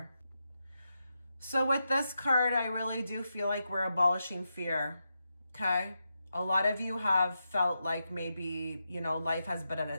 So with this card, I really do feel like we're abolishing fear, okay? A lot of you have felt like maybe, you know, life has been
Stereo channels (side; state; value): both; inverted; correlation -0.87